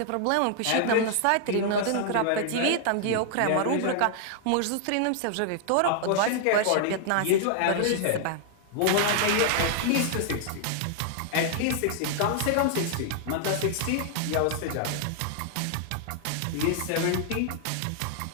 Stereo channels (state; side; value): different; both; correlation -0.01